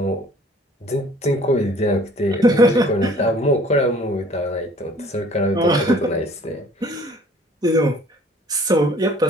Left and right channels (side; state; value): both; normal; correlation 0.53